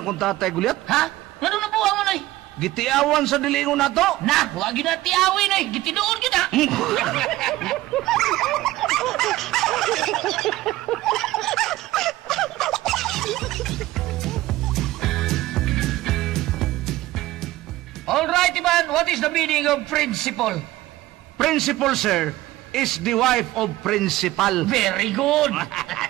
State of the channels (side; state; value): left; quieter; 16.7 dB